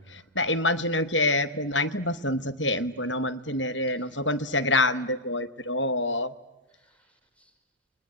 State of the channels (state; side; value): normal; both; correlation -0.08